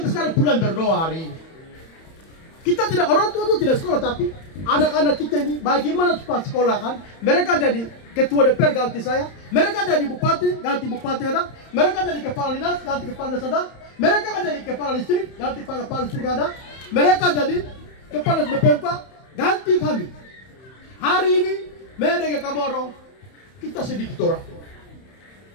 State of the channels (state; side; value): late; right; 31 ms